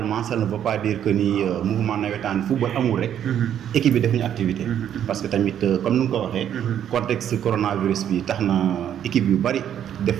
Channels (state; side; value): quieter; left; 9.8 dB